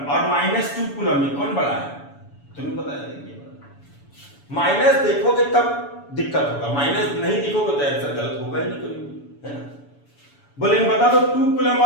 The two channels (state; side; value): late; right; 7.0 ms